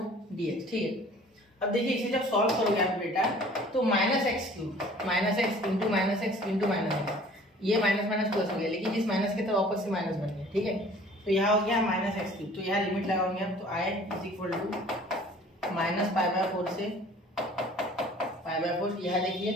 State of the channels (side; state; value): both; normal; correlation 0.50